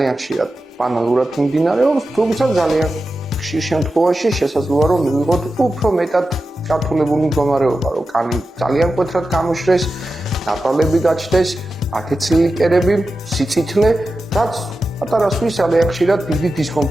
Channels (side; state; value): both; normal; correlation 0.92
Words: ხშირად ბანალურად მიმდინარეობს, თუმცა ძალიან ხშირ შემთხვევაში შესაძლოა რომ მივიღოთ უფრო მეტად გართულებული მდგომარეობა, რომ კანი ძალიან მკვეთრად გამოშრეს, ნაპრალები გაჩნდეს, აკეცილი კერები, სიცითლე, რაც პატარასთვის ძალიან ხშირად დიდი